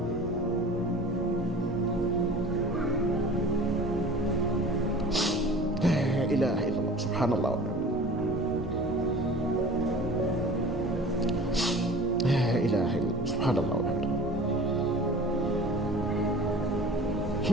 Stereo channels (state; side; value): normal; both; correlation 0.42